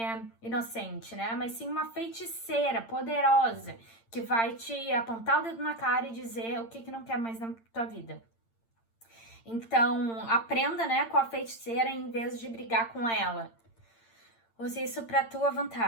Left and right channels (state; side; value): late; right; 8.8 ms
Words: inocente, né? Mas sim uma feiticeira poderosa que vai te apontar o dedo na cara e dizer o que não quer mais na tua vida. Então, aprenda, né, com a feiticeira em vez de brigar com ela. Use isso pra tua